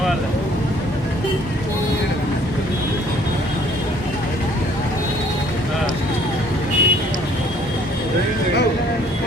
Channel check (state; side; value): normal; both; correlation 0.59